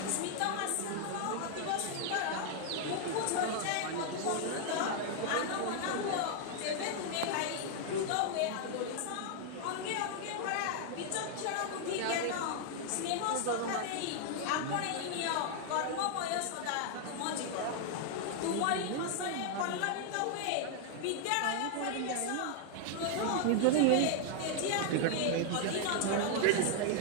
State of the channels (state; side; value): different; both; correlation 0.00